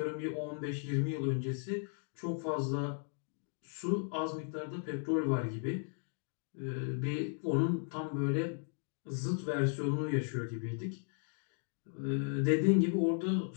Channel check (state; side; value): silent; right; 54 dB below the other